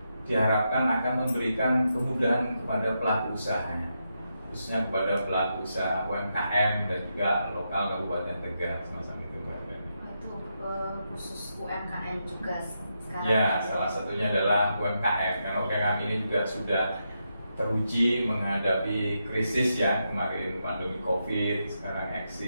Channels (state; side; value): inverted; both; correlation -0.84